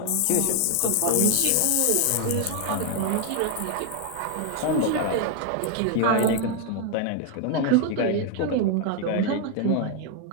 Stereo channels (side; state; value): both; different; correlation 0.00